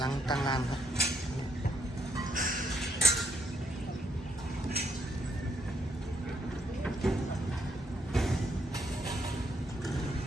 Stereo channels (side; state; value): both; normal; correlation 0.73